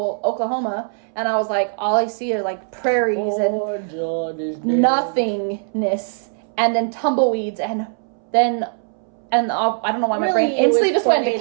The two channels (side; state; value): left; silent; 63 dB below the other